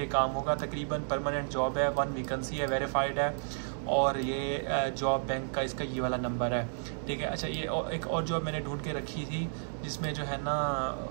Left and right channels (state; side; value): silent; left; digital silence